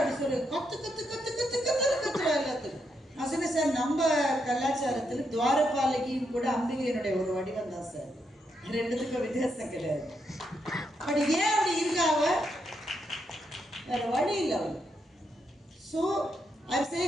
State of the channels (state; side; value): normal; both; correlation 0.80